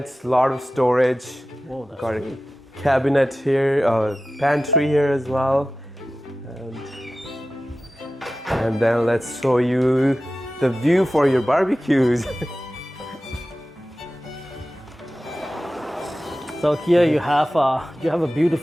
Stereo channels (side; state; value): both; normal; correlation 0.94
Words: lot of storage. Whoa, that's got sweet. a cabinet here, pantry here as well. And then let's show you the view for your barbecues. So here you have a